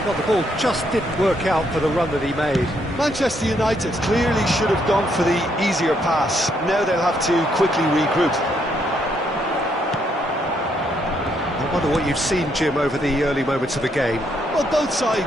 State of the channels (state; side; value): normal; both; correlation 0.73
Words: Well, the ball just didn't work out for the run that he made. Manchester United clearly should have gone for the easier pass. Now they'll have to quickly regroup. I wonder what you've seen, Jim, over the early moments of the game. Well, both